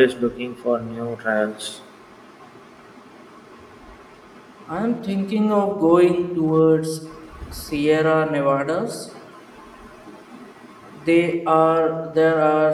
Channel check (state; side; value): identical; both; correlation 1.00